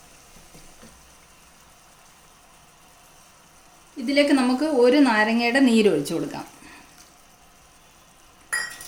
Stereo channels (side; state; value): both; identical; correlation 1.00